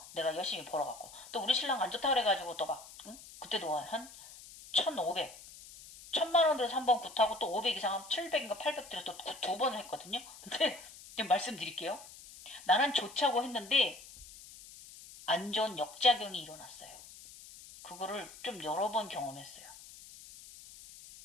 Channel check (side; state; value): left; noise; hiss, 17 dB below the sound